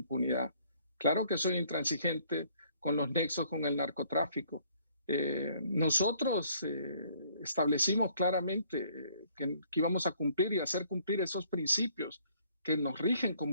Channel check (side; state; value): both; inverted; correlation -0.62